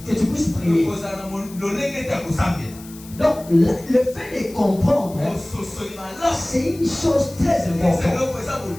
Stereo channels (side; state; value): left; noise; hiss, 19 dB below the sound